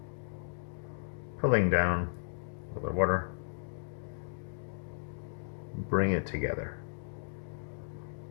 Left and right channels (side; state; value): right; silent; digital silence